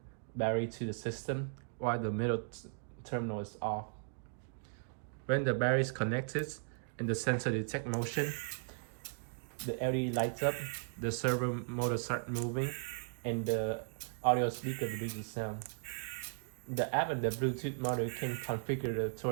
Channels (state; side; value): silent; left; digital silence